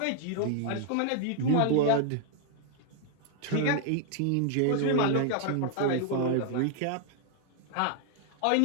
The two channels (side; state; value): both; different; correlation 0.00